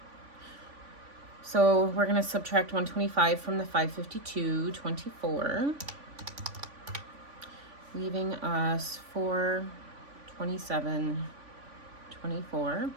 So we're going to subtract $125 from the $552.24, leaving us $427.24.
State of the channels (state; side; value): late; left; 3.5 ms